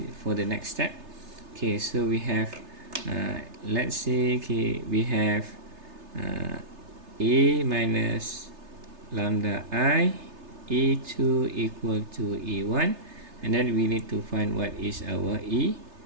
for the next step. Okay, so we have let's say, okay, we have a minus lambda I, E2 equal to E1, and then we need to find what is our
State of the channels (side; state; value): left; late; 3.3 ms